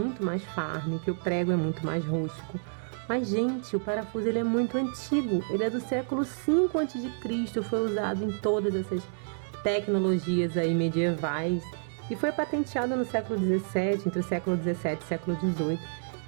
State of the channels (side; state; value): left; silent; digital silence